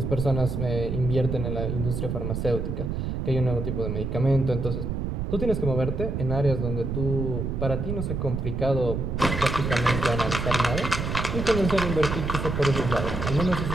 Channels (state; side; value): noise; right; rumble, 2 dB below the sound